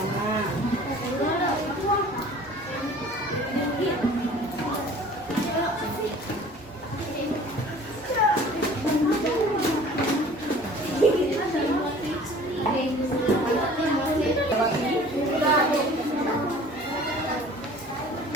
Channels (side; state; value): both; normal; correlation 0.48